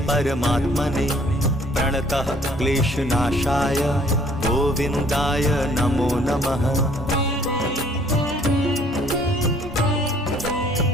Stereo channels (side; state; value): both; normal; correlation 0.60